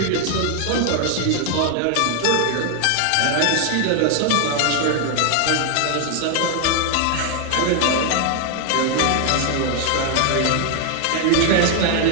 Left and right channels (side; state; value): both; different; correlation 0.00